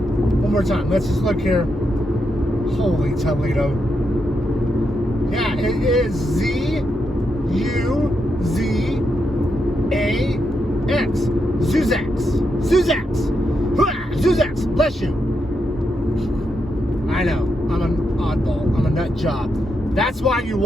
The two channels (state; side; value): normal; both; correlation 0.83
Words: more time. Let's just look here. Holy Toledo. Yeah, it is Z-U-Z-A-X. Zuzax. Zuzax. Zuzax. Bless you. I know. I'm an oddball. I'm a nut job. That's why you